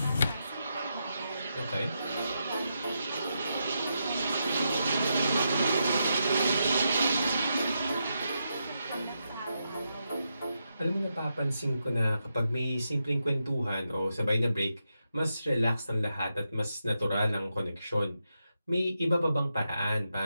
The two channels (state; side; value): inverted; both; correlation -0.85